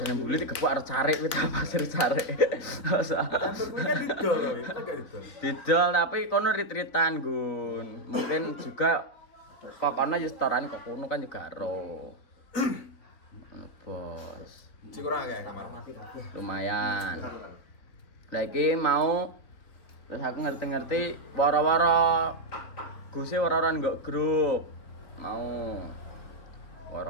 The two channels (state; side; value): late; right; 3.8 ms